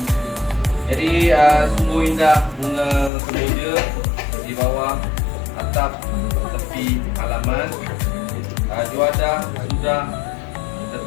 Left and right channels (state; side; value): drops out; right; at 3.1 s